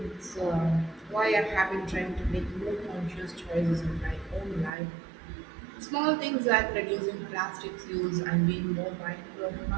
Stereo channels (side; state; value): left; drops out; at 4.7 s